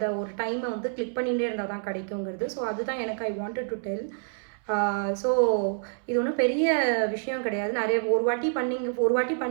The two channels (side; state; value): left; silent; 60 dB below the other